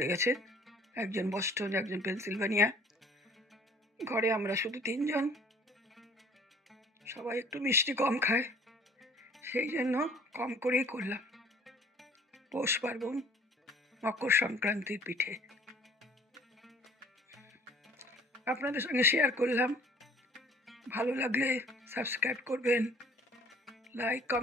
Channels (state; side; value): normal; both; correlation 0.53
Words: গেছে, একজন বস্টন, একজন পেনসিলভানিয়া, ঘরে আমরা শুধু 3 জন, সবাই একটু মিষ্টি কম খায়, সেই জন্য কম করেই করলাম। পৌষ পার্বণ, মকর সংক্রান্তির পিঠে আপনাদের সঙ্গে শেয়ার করলাম। ভালো লাগলে সাবস্ক্রাইব করবেন, লাইক